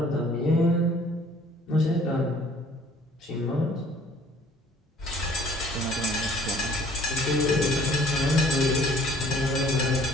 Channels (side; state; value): both; normal; correlation 0.55